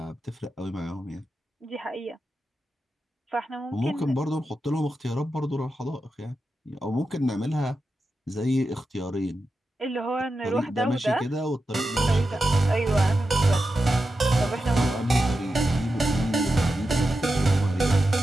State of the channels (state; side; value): normal; both; correlation 0.90